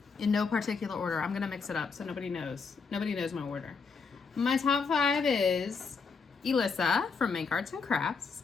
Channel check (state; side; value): quieter; right; 5.1 dB